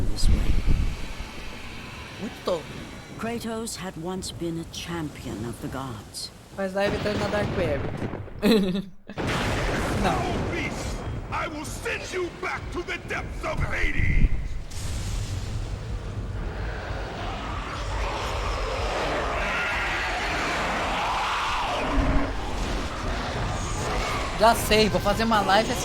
this way. Muito tola. Kratos had once been a champion of the gods. Mas lá evitando na Dark Web. Não. Beast, I will send you back to the depths of Hades! Já sei, vou fazer uma live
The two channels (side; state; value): both; identical; correlation 1.00